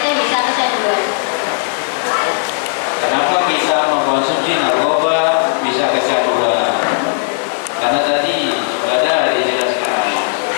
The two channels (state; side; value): silent; right; 69 dB below the other